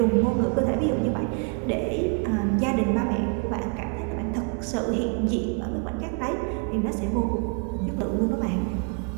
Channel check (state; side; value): quieter; left; 38.0 dB